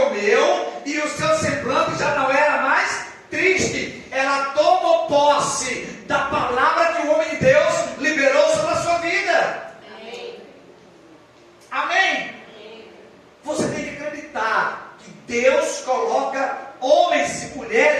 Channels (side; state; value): both; identical; correlation 1.00